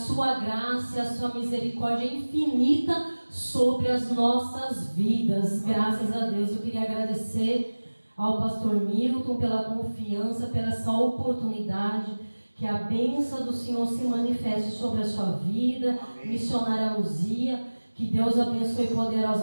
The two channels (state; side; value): inverted; both; correlation -1.00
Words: graça e a sua misericórdia é infinita sobre as nossas vidas. Graças a Deus. Eu queria agradecer ao pastor Milton pela confiança, pela essa oportunidade. Que a bênção do Senhor se manifeste sobre a sua vida. Amém. Missionária Luzia, que Deus abençoe